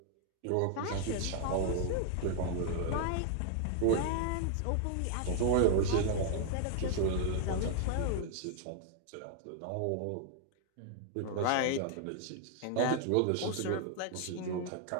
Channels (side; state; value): both; different; correlation 0.00